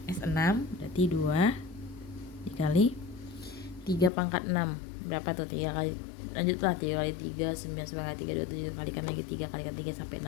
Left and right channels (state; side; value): drops out; right; at 4.1 s